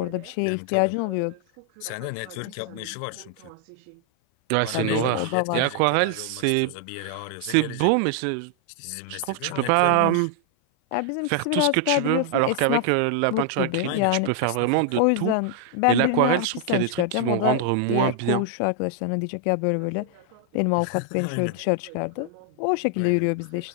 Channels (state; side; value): different; both; correlation 0.00